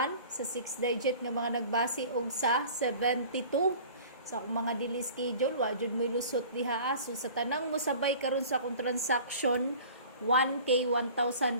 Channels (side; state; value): both; inverted; correlation -0.44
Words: sa 6 digit nga mga nagbase og sa 72. Sa akong mga dili schedule, wa jud mo lusot diha. So sa tanang mo sabay karon sa akong transaction 1K